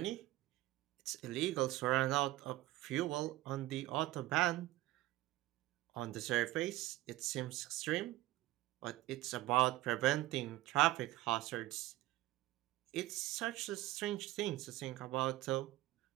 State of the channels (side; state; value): left; quieter; 16.6 dB